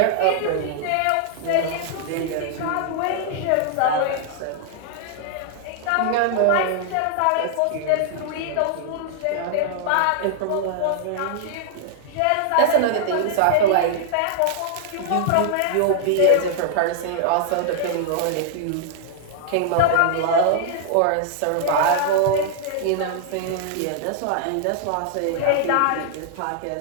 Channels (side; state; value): both; different; correlation 0.00